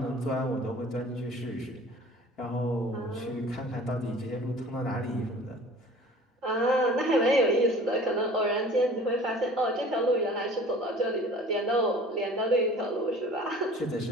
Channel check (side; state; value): both; normal; correlation 0.46